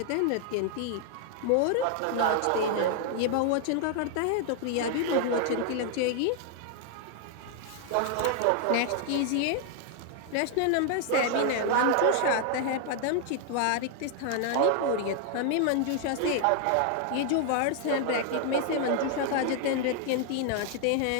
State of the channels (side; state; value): both; different; correlation 0.00